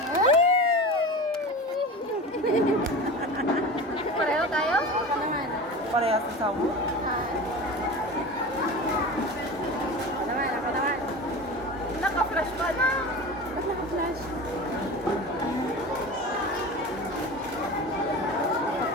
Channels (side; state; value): both; normal; correlation 0.31